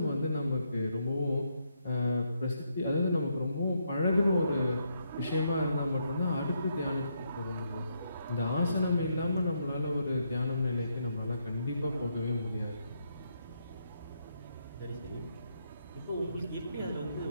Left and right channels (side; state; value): both; inverted; correlation -0.78